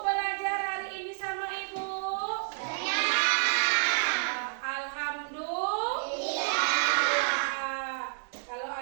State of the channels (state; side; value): silent; left; digital silence